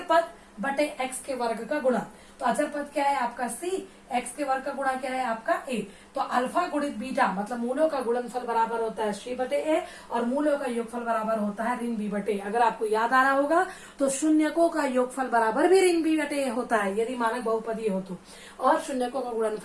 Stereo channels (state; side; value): identical; both; correlation 1.00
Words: पद बटे एक्स के वर्ग का गुणा। तो अचर पद क्या है आपका सी, एक्स के वर्ग का गुणा क्या है आपका ए। तो अल्फा गुणित बीटा मतलब मूलों का गुणनफल बराबर होता है सी बटे ए और मूलों का योगफल बराबर होता है ऋण बी बटे। अगर आपको याद आ रहा होगा तो शून्यकों का योगफल बराबर भी ऋण बी बटे ए होता है यदि मानक बहुपदी हो तो, और शून्यकों का